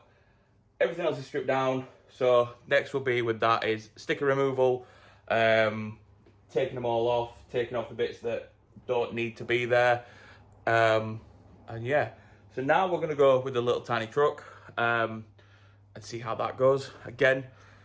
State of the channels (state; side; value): identical; both; correlation 1.00